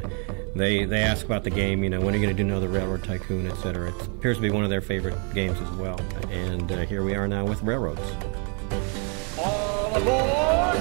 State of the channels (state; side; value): quieter; left; 38.0 dB